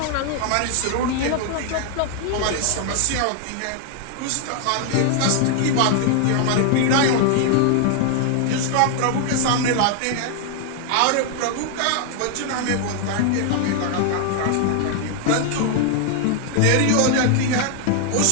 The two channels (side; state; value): both; different; correlation 0.00